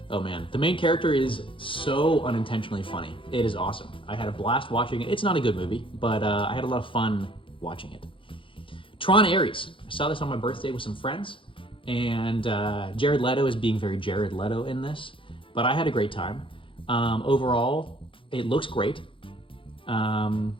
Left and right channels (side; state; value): right; late; 0.25 ms